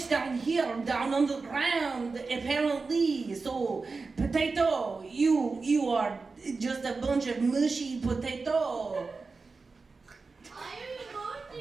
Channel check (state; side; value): quieter; left; 4.2 dB